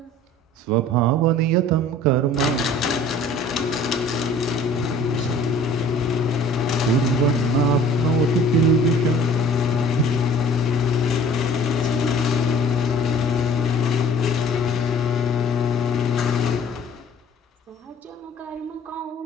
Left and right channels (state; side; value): normal; both; correlation 0.49